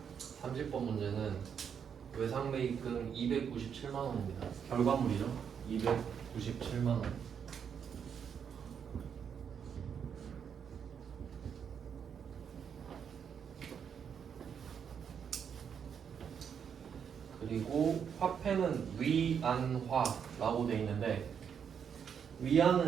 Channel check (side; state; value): left; quieter; 7.5 dB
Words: (30번) 문제는 외상매입금 297만원입니다. 결과물이죠. 297만원. 그리고 화폐는 위안화라고 되어 있는데